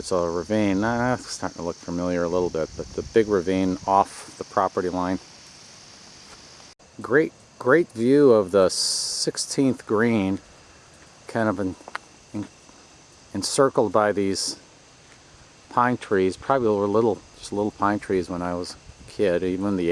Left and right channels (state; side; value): identical; both; correlation 1.00